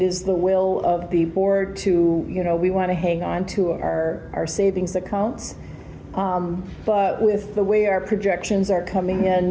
is the will of the board to, we want to hang on to our savings accounts. But with the way our projections are coming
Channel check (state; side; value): identical; both; correlation 1.00